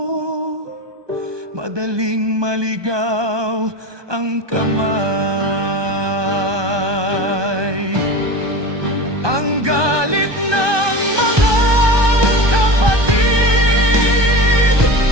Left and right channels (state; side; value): late; left; 1.2 ms